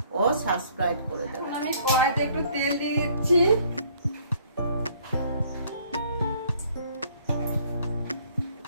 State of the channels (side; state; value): both; inverted; correlation -0.60